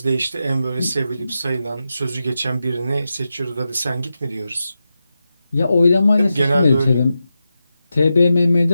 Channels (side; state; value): both; inverted; correlation -0.90